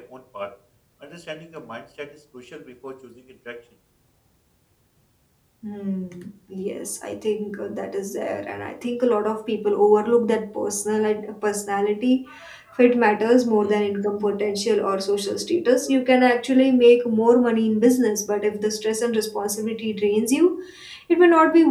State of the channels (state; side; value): identical; both; correlation 1.00